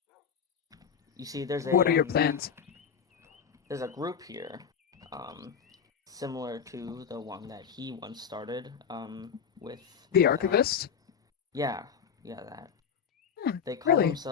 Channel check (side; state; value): right; quieter; 7.1 dB